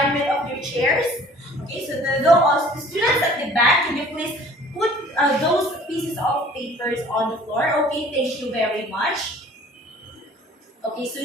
of your chairs? Okay, so the students at the back, can you please put those pieces of papers on the floor? Okay, thank you very much. Okay, so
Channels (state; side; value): normal; both; correlation 0.51